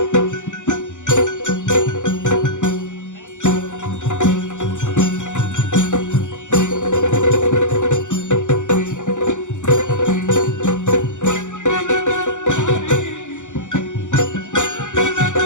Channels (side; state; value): right; late; 0.86 ms